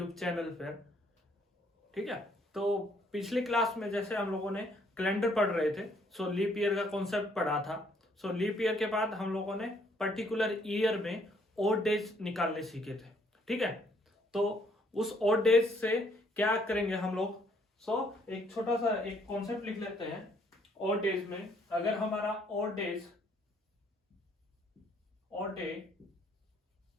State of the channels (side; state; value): both; normal; correlation 0.67